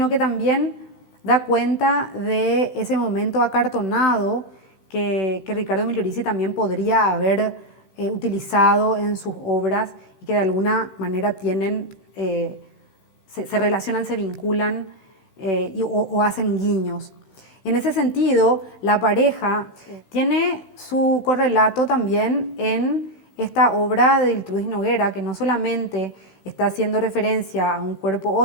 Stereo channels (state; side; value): late; right; 16 ms